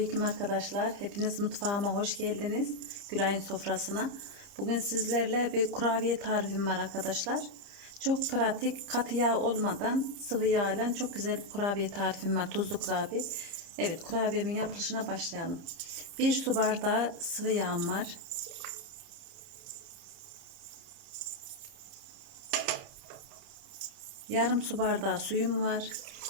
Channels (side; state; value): left; late; 30 ms